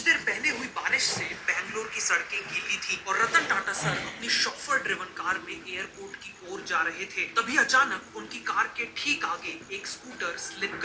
देर पहले हुई बारिश से बैंगलोर की सड़कें गीली थी और रतन टाटा सर अपनी शॉफर ड्रिवन कार में एयरपोर्ट की ओर जा रहे थे। तभी अचानक उनकी कार के ठीक आगे एक स्कूटर स्लिप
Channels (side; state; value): both; identical; correlation 1.00